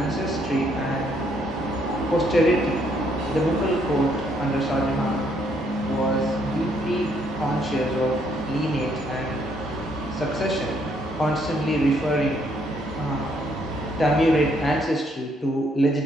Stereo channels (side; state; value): both; normal; correlation 0.70